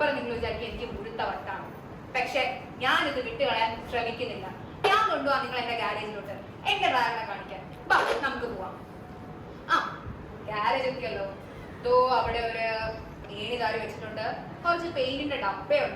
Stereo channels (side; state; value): both; identical; correlation 1.00